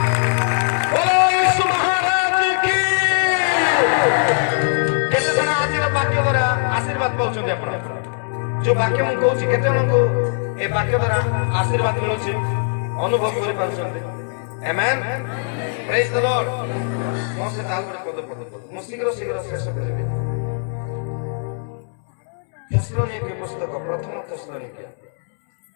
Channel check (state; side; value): silent; right; digital silence